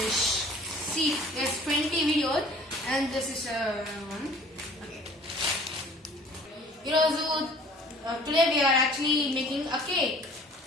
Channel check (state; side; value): normal; both; correlation 0.50